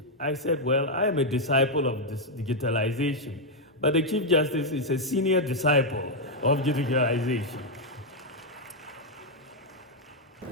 I said, well, I am a disciple of this digitalization, but the Chief Justice is a senior disciple of digitalization.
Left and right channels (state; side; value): normal; both; correlation -0.01